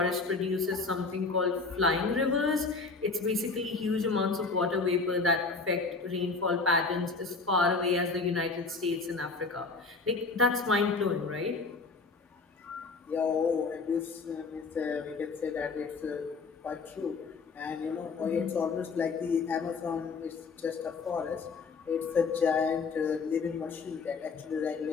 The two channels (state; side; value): quieter; right; 4.2 dB